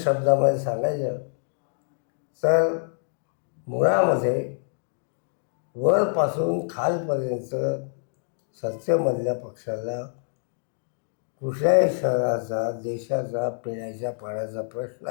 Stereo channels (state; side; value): silent; right; digital silence